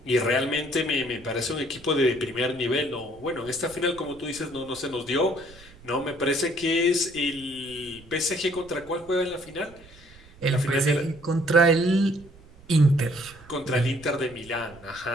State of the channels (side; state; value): right; noise; rumble, 22 dB below the sound